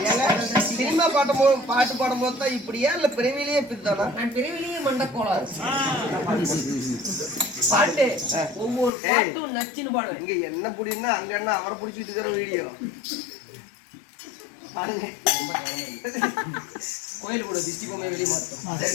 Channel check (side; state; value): right; drops out; at 8.9 s